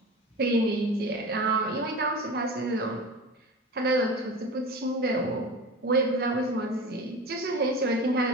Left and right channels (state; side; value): normal; both; correlation 0.32